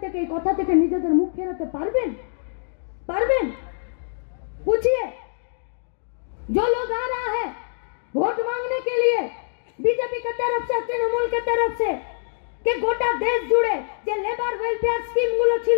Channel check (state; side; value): silent; right; digital silence